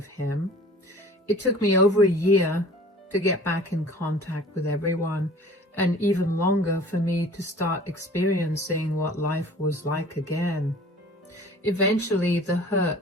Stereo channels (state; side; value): normal; both; correlation 0.46